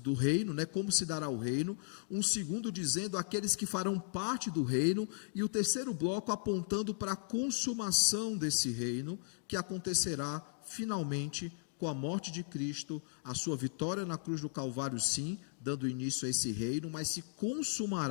reino, né? Como se dará o reino, um segundo dizendo aqueles que farão parte do reino, e o terceiro bloco apontando para a consumação desse reino, que acontecerá finalmente com a morte de Cristo, a sua vitória na cruz do Calvário, sim, dando início a esse reino, mas se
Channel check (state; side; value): silent; right; digital silence